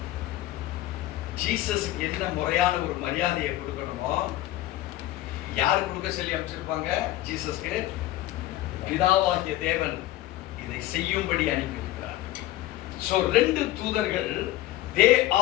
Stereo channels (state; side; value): quieter; right; 15.5 dB